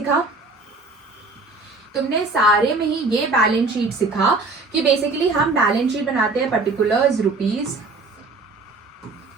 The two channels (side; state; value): left; quieter; 3.6 dB